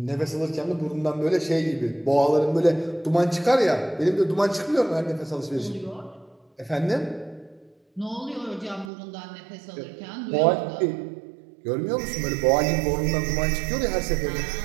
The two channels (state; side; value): drops out; left; at 8.9 s